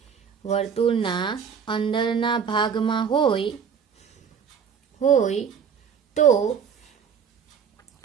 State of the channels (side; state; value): left; quieter; 7.1 dB